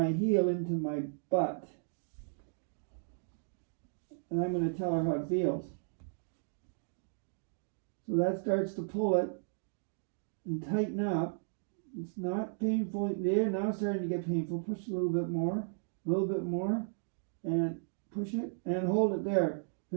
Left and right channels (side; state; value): left; silent; digital silence